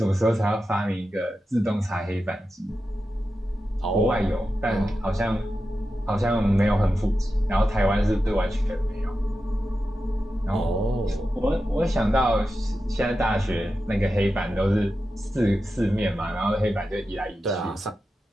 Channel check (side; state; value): both; normal; correlation 0.91